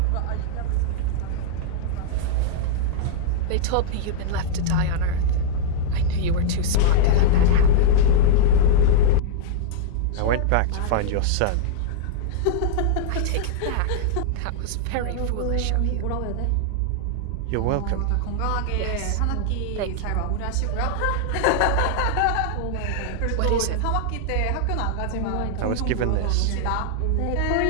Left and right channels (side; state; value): both; different; correlation -0.01